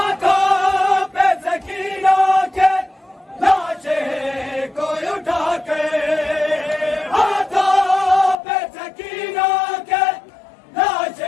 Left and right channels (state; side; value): drops out; right; at 8.3 s